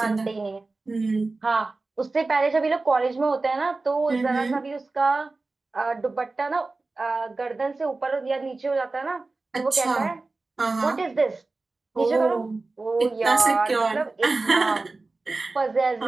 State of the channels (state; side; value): quieter; left; 3.5 dB